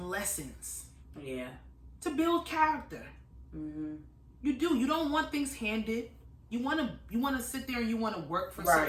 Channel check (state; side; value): identical; both; correlation 1.00